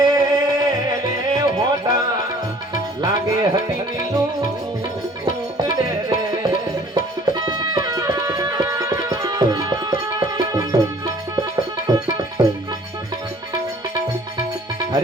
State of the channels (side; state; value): both; normal; correlation 0.53